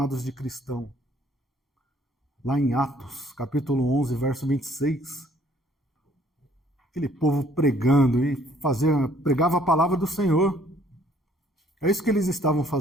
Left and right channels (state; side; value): normal; both; correlation 0.61